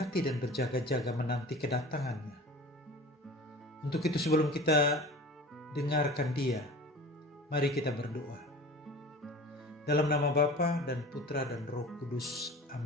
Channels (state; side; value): normal; both; correlation 0.39